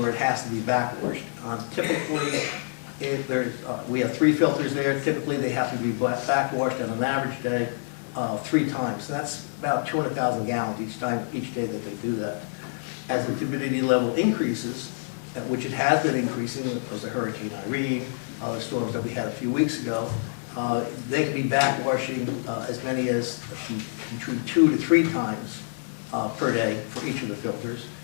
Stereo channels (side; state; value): right; silent; digital silence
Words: it has to be backwashed. Typically, if there's, we have 3 filters there. Typically, they have to be backwashed on an average day 3 times. And that's about 200,000 gallons each day that they do that. As the turbidity level increases, which it has been increasing, because of Hurricane Irene, the storms that we had a few weeks ago, they can be backwashing as many as between 2 to 3 times per day for each of the filters.